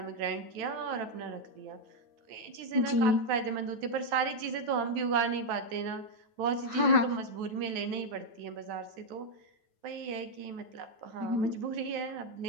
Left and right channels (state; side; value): late; left; 9.2 ms